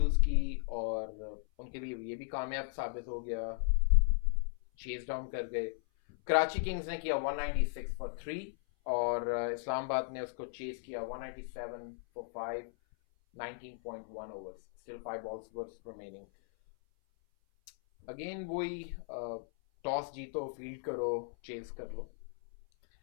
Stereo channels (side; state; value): right; silent; 53 dB below the other